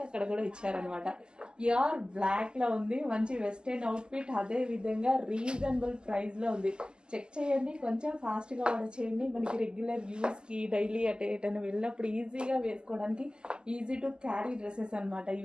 అక్కడ కూడా ఇచ్చారనమాట. ప్యూర్ బ్లాక్ లో ఉంది, మంచి వెస్టర్న్ అవుట్ఫిట్. అదే విధంగా రీజనబుల్ ప్రైస్ లో ఉంది. చెక్ చేయండి, కొంచెం ఫాస్ట్ గా ఆర్డర్ చేయండి. మనకి రెగ్యులర్ యూస్ కి డైలీ ఎటైనా వెళ్ళినప్పుడు ఈజీగా వేసుకోవడానికి ఈజీ టు క్యారీ డ్రెస్సెస్ అనమాట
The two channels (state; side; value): late; left; 0.047 ms